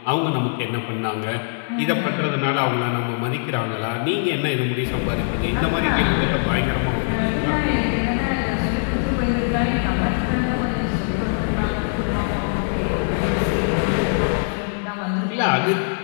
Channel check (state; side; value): silent; right; digital silence